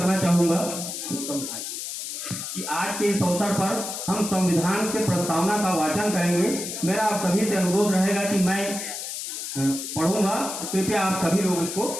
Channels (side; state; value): left; noise; hiss, 6 dB below the sound